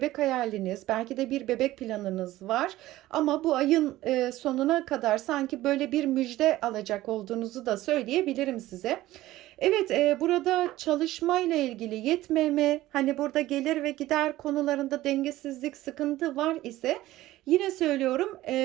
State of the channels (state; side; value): quieter; left; 16.1 dB